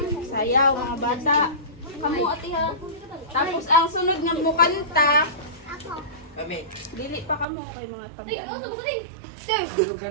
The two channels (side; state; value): left; drops out; at 7.5 s